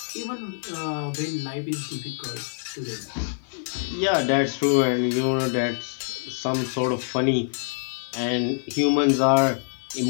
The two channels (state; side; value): silent; right; 61 dB below the other